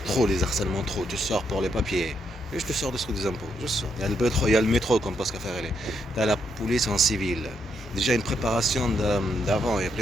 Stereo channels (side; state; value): both; normal; correlation 0.78